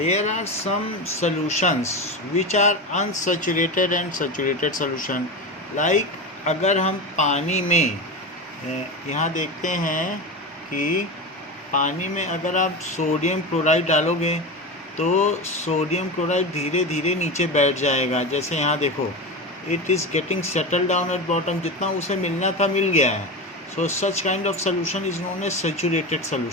are some solutions which are unsaturated and saturated solution. Like अगर हम पानी में यहाँ देखते हैं कि पानी में अगर आप सोडियम क्लोराइड डालोगे तो सोडियम क्लोराइड धीरे धीरे नीचे बैठ जाएगा. जैसे यहाँ देखो, it is getting settle down at bottom. जितना उसे मिलना था मिल गया है. So such kind of solution is known as saturated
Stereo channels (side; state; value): both; normal; correlation 0.22